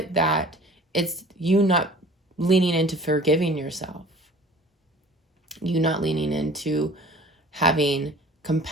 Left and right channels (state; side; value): normal; both; correlation 0.47